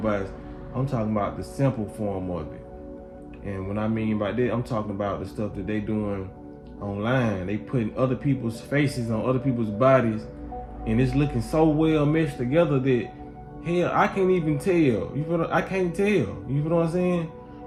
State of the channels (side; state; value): both; identical; correlation 1.00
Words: I'm talking about the simple form of it. And when I mean by that, I'm talking about the stuff that they doing online. They putting other people's faces on other people's bodies, and it's looking so well meshed together that hell, I can't even tell. You feel? I can't tell. You feel what I'm saying?